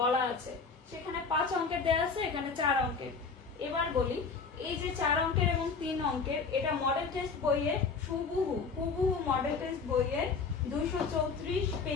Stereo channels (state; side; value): quieter; right; 5.0 dB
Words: আছে। সেখানে 5 অঙ্কের দেয়া আছে, এখানে 4 অঙ্কের। এবার বলি, এই যে 4 অঙ্কের এবং 3 অঙ্কের, এটা মডেল টেস্ট বইয়ে হুবহু মডেল টেস্ট বইয়ে 234